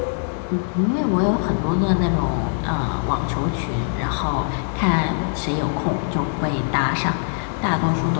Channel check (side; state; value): right; silent; 55 dB below the other